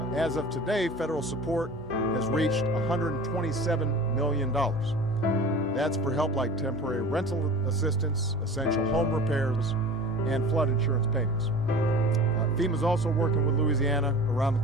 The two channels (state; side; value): normal; both; correlation 0.39